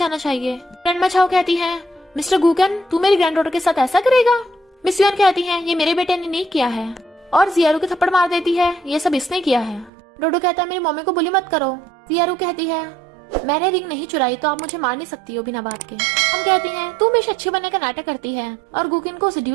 चाहिए। ग्रैंडमा झाओ कहती है, मिस्टर गूकन तू मेरी ग्रैंडडॉटर के साथ ऐसा करेगा। मिस युआन कहती है, ये मेरे बेटे ने नहीं किया है, और जियारू के थप्पड़ मार देती है, ये सब इसने किया है। डोडो कहता है, मेरी मम्मी को बुली मत करो। जियारू कहती है, मैंने रिंग नहीं चुराई तो आप मुझे मार नहीं सकती हो बिना बात के। हम कहती हैं, तू हमेशा अच्छे बनने का नाटक करती है और गुकिन को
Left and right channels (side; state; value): left; drops out; at 9.9 s